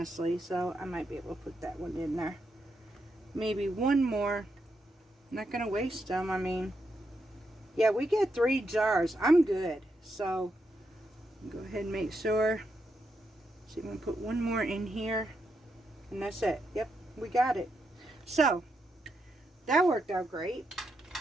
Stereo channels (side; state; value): both; normal; correlation 0.82